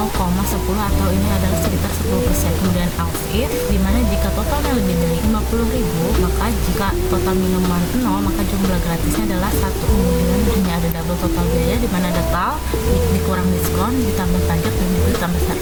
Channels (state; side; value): identical; both; correlation 1.00